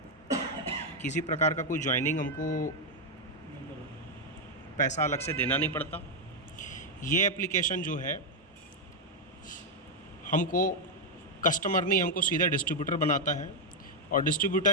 किसी प्रकार का कोई ज्वाइनिंग हमको पैसा अलग से देना नहीं पड़ता। ये एप्लीकेशन जो है हमको कस्टमर नहीं, हमको सीधा डिस्ट्रीब्यूटर बनाता है। और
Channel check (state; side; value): normal; both; correlation 0.01